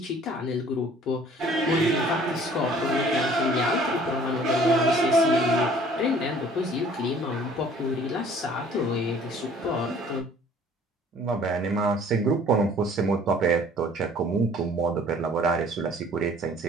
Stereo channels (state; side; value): normal; both; correlation 0.54